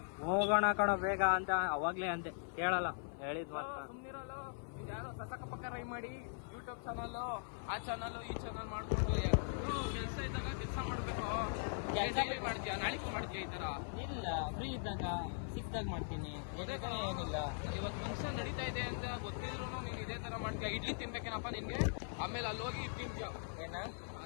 ಹೋಗೋಣ ಕಣೋ ಬೇಗ ಅಂತ ಅವಾಗ್ಲೇ ಅಂತೆ, ಕೇಳಲ್ಲ. ಹೇಳಿದ್ ಮಾತ್ರ ಸುಮ್ಮನಿರಲ್ಲ. ಯಾರೋ ಸಸಕ ಪಕ್ಕ ರೈ ಮಾಡಿ ಯೂಟ್ಯೂಬ್ ಚಾನಲ್, ಆ ಚಾನಲ್ ಈ ಚಾನಲ್ ಮಾಡ್ಕೊಂಡು ಕೆಲಸ ಇದ್ದಾಗ ಕೆಲಸ ಮಾಡ್ಬೇಕು. ಮಾಡ್ತೀಯ, ನಾಳೆಗೂ ಮಾಡ್ತೀಯ ಈ ತರ? ಇಲ್ಲ, ಫ್ರೀ ಇದ್ದಾಗ ಸಿಕ್ದಾಗ ಮಾಡ್ತೀನಿ. ಏನಿಲ್ಲ, ಇವತ್ತು ಫಂಕ್ಷನ್ ನಡೀತಾ ಇದೆ ಅಂತ ಗೊತ್ತಿದ್ರು ನೀನು ಇದೇ ತರ ಮಾಡ್ತೀಯ. ಇಡ್ಲಿ ತಿನ್ಬೇಕೇನಪ್ಪ ನಿನ್ಗೆ? ಆಮೇಲೆ ಅಲ್ಲಿ ಹೋಗಿ ತಿಂತೀಯ. ಏನ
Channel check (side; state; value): right; silent; 51 dB below the other